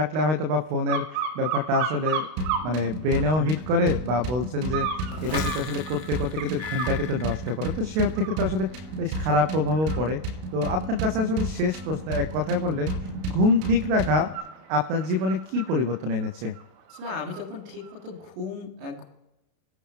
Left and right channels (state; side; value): late; left; 32 ms